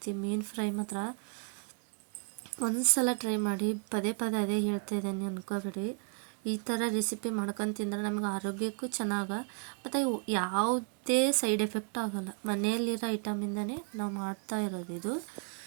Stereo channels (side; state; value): left; quieter; 36.0 dB